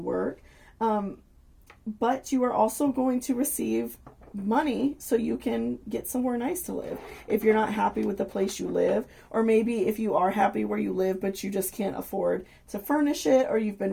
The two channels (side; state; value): both; identical; correlation 1.00